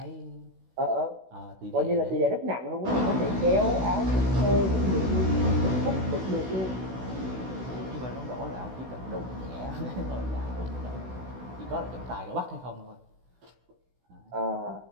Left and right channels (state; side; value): late; left; 16 ms